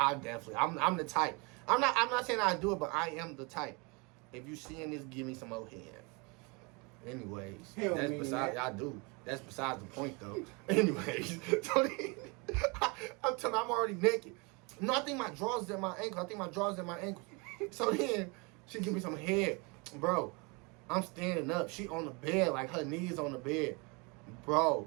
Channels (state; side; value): quieter; left; 29.7 dB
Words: the type. I'm not saying I do it, but I am the type. If you seeing this, give me some more head. Anyways, Hell that's man, besides. that. I do. That's besides the point, though. Anyways, so then, I'm telling you, I'm already naked. No, I think my drawers is at my ankle. So then she give me some head, bro. I'm standing up. She on the bed, like her knees on the bed, bro.